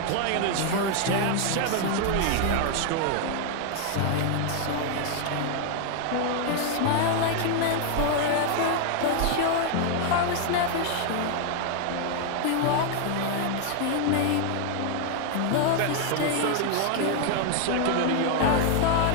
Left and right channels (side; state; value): both; different; correlation 0.00